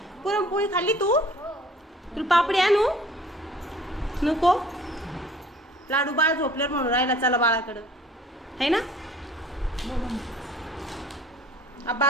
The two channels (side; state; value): both; normal; correlation 0.52